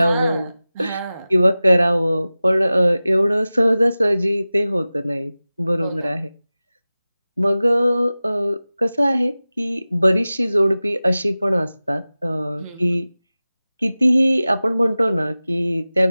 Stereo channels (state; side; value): inverted; both; correlation -0.97